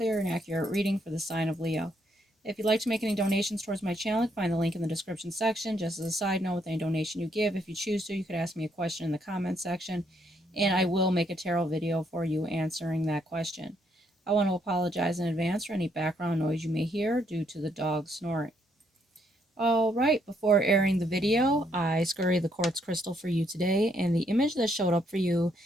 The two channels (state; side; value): normal; both; correlation 0.73